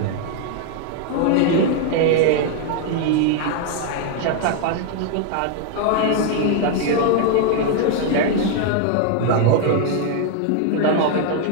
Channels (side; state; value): both; different; correlation 0.00